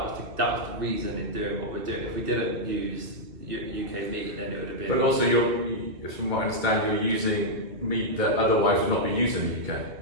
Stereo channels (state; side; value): late; left; 2.1 ms